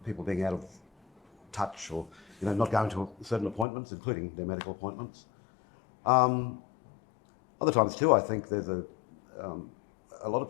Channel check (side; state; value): right; drops out; at 3.7 s